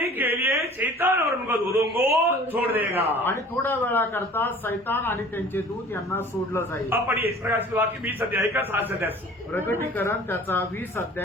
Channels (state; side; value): normal; both; correlation 0.47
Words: के लिए शैतान और उनका दूतों को छोड़ देगा। आणि थोड्या वेळाकरता सैतान आणि त्यांचे दूत यांना सोडलं जाईल. अब पढ़िए इस प्रकार से वाक्य 20 अध्याय का 7 अध्याय से। प्रकटीकरण त्याचा 20